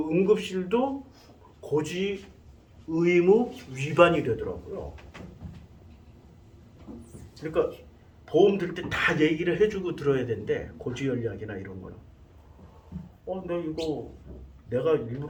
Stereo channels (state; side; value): identical; both; correlation 1.00